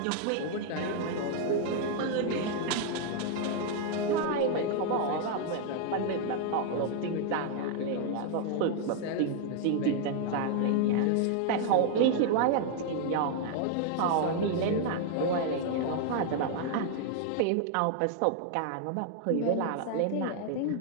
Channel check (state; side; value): different; both; correlation 0.00